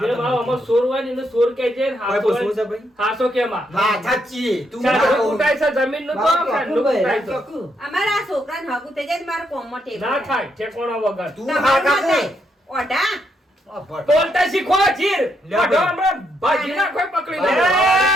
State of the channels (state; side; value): normal; both; correlation 0.77